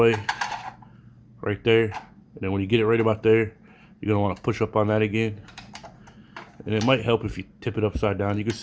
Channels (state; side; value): identical; both; correlation 1.00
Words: right there, and then when you get it right about there, you're gonna want to push up on that again. And it might help if you tip it upside down. You can